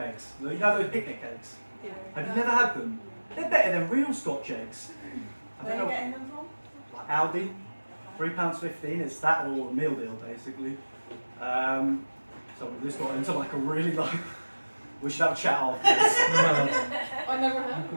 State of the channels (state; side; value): inverted; both; correlation -1.00